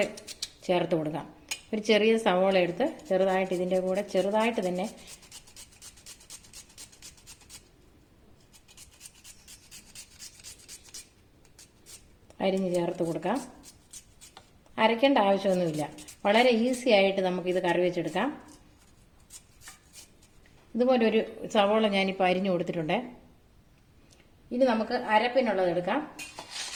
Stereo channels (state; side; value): identical; both; correlation 1.00